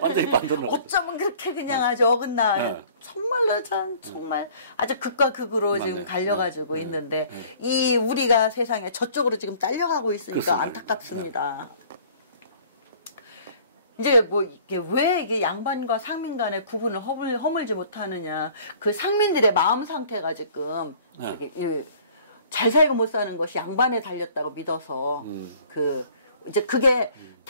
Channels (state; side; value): inverted; both; correlation -0.52